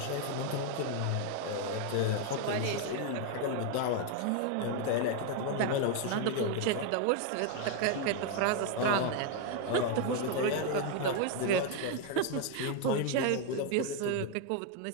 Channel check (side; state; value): both; different; correlation 0.00